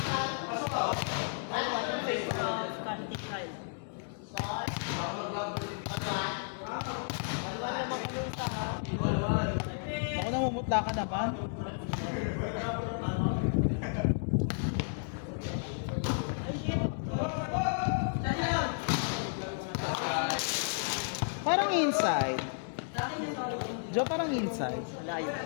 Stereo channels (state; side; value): silent; right; digital silence